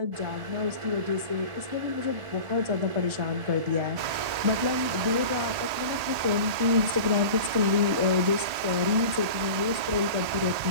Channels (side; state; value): left; late; 1.8 ms